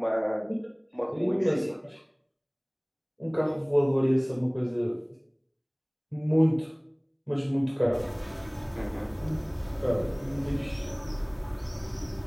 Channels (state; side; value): identical; both; correlation 1.00